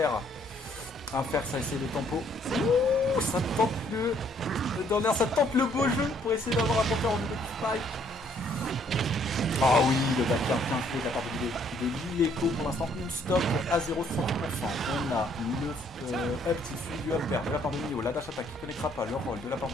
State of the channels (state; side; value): normal; both; correlation 0.65